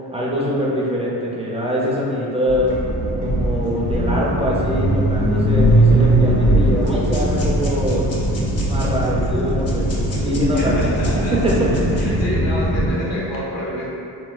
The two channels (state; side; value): normal; both; correlation 0.53